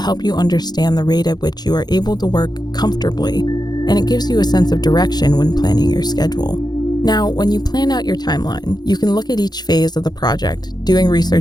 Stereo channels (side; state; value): right; late; 0.20 ms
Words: you understand the rate at which you are able to work comfortably, and it gives you a sense of direction when planning your schedule. Now, when you plan out your timeline, you can look at each phase of the project, doing